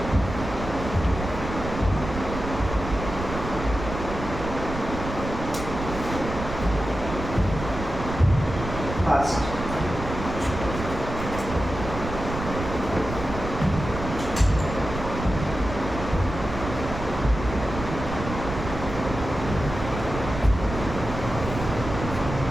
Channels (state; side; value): noise; right; rumble, 7 dB below the sound